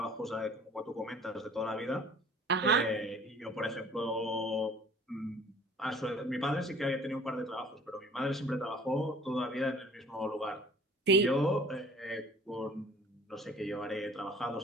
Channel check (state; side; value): normal; both; correlation 0.50